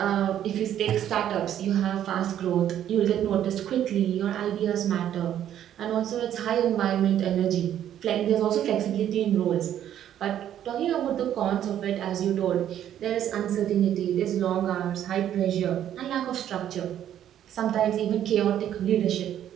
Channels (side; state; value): left; quieter; 10.7 dB